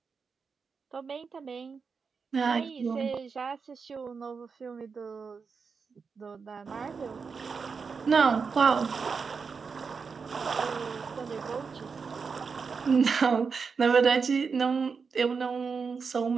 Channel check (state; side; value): quieter; left; 5.4 dB